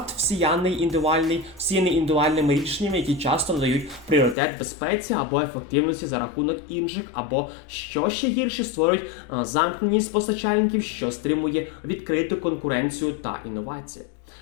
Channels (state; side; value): drops out; right; at 4.4 s